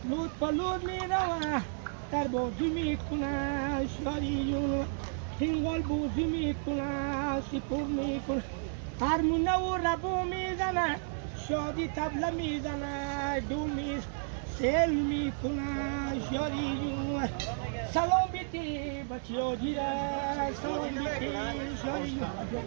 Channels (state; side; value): silent; left; digital silence